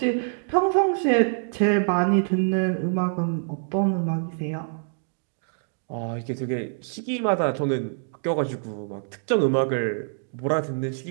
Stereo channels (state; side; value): silent; left; digital silence